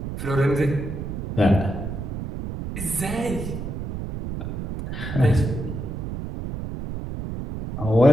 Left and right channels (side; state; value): right; noise; rumble, 6 dB below the sound